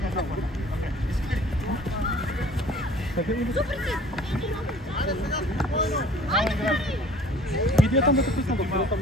Иди там да те писна,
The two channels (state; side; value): normal; both; correlation 0.50